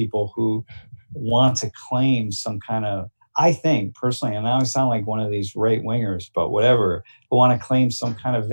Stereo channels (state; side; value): inverted; both; correlation -1.00